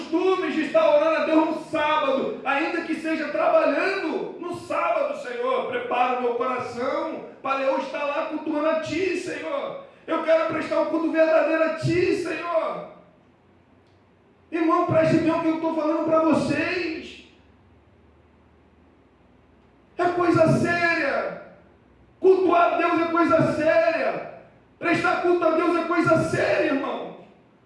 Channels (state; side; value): identical; both; correlation 1.00